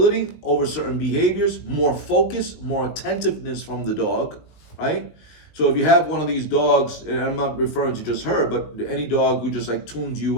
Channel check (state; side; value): late; right; 19 ms